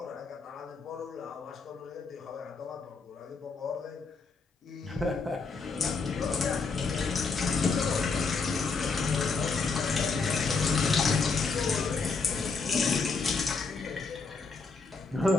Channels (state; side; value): quieter; right; 4.4 dB